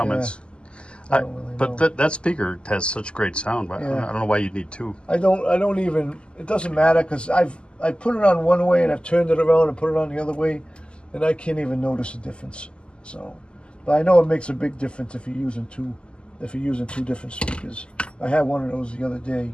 I don't really know. But that speaker has such great sound. But I don't know why you'd need 2. I don't even. It doesn't matter because I put it on one way and I've turned it around and put it on the other way, and I can't even notice the difference. So, but I know it makes a big difference if you're using 2 different speakers. I had one of those the other day,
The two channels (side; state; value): right; late; 0.052 ms